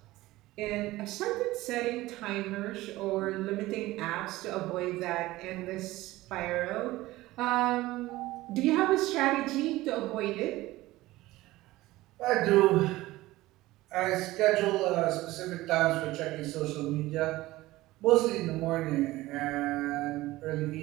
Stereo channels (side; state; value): left; quieter; 18.0 dB